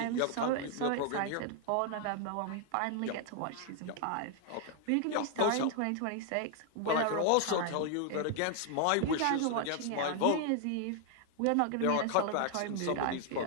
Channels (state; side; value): different; both; correlation 0.00